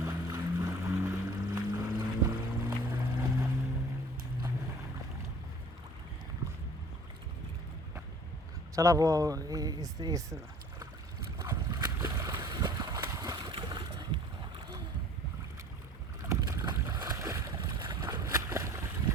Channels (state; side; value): normal; both; correlation 0.49